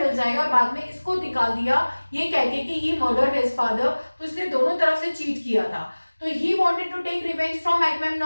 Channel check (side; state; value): both; inverted; correlation -1.00